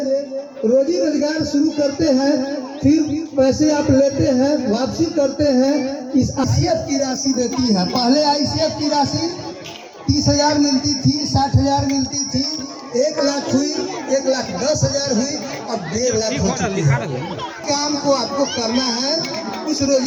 रोजी रोजगार शुरू करते हैं, फिर पैसे आप लेते हैं, वापसी करते हैं। इस आईसीएफ की राशि देती है। पहले आईसीएफ की राशि 30,000 मिलती थी, 60,000 मिलती थी, 1 लाख हुई, 1,10,000 हुई, अब 1.5 लाख हो चुकी है। काम को आपको करना है, उस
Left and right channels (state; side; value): identical; both; correlation 1.00